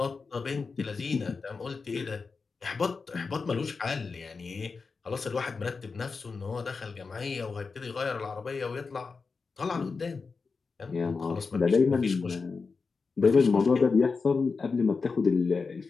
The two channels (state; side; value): quieter; right; 4.7 dB